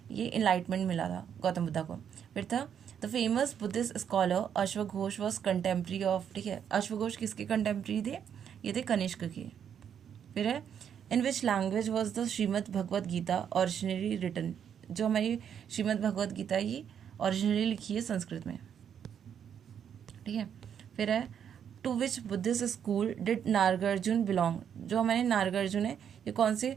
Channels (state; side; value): quieter; left; 8.4 dB